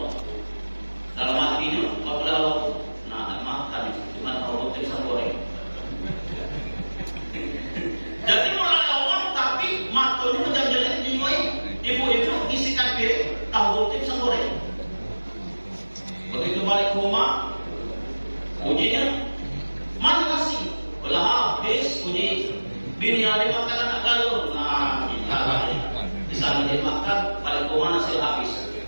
Dalam hatinya apabila Allah makan cuma tahu putih pisang goreng. Jadi mulai Allah tapi matanya jam jeli jenguai. Ibu-ibu isikan piring tahu putih pisang goreng. Begitu balik ke rumah, ujinya mana nasi? Belah habis uji bini ada makan anak galur. Nah, kita di sana dia makan balik ke rumah nasi habis.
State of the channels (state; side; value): inverted; both; correlation -1.00